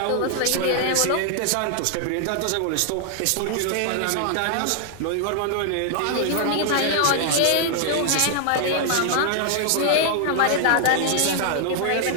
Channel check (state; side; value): different; both; correlation 0.00